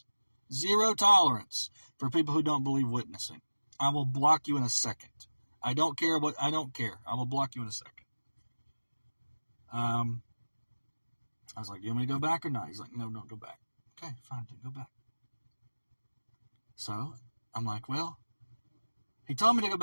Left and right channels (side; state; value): both; inverted; correlation -1.00